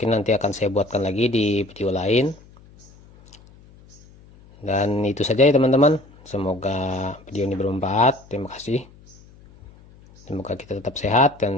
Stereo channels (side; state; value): left; noise; hum, 25 dB below the sound